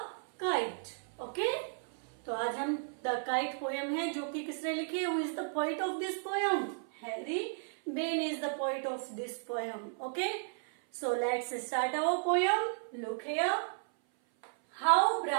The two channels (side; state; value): left; silent; 55 dB below the other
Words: Kite. Okay? तो आज हम the kite poem है जो कि किसने लिखी है? Who is the poet of this poem? Harry Behn is the poet of this poem. Okay, so let's start our poem. Look here. How